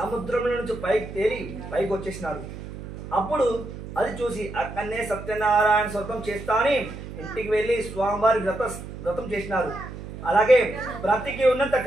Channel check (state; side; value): noise; right; hum, 11 dB below the sound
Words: నుంచి పైకి తేలి పైకి వచ్చేసినాడు. అప్పుడు అది చూసి అక్కడనే సత్యనారాయణ వ్రతం చేస్తా అని ఇంటికి వెళ్ళి స్వామివారి వ్రతం చేసినారు. అలాగే బ్రతికి ఉన్నంత